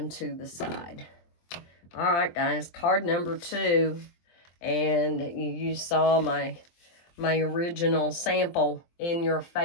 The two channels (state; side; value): late; right; 23 ms